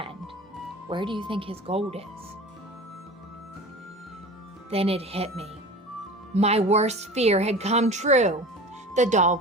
Where do you think his gold is? Then it hit me. My worst fear had come true. The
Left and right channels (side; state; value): both; normal; correlation 0.36